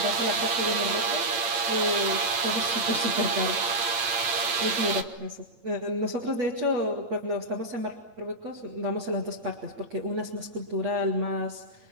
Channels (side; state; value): left; late; 8.7 ms